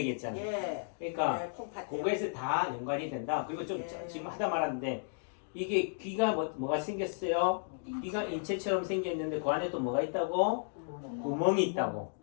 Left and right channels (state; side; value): silent; right; digital silence